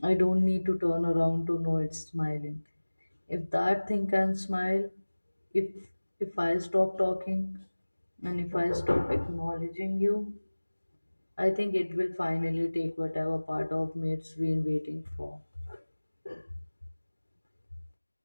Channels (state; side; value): inverted; both; correlation -1.00